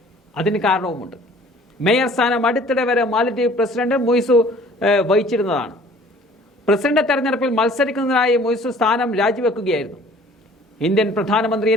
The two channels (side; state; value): both; normal; correlation 0.52